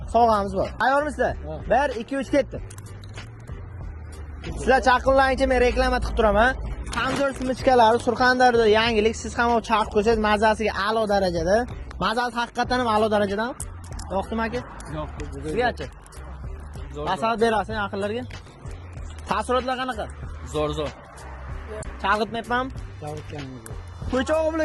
sovg'amiz bor. Tayyormisizlar? 1 2 3 ketdi. Sizlar chaqinlaringcha men reklama qilib turaman. Kamzor simichkalari Surxondaryoda yangilik. Siz ham olib chaqib ko'rsangiz mazasiga a'lo darajada. Mazasi haqiqatan ham a'lo darajadan. Yo'qmi aka? Yo'q. Sizgachi? Maslahat berasiz yaqinlarga. Taassurotlar qanaqa? Zo'r. Chalg'itmayapmanmi? Chalg'itganingiz. Ko'chog'i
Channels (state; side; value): identical; both; correlation 1.00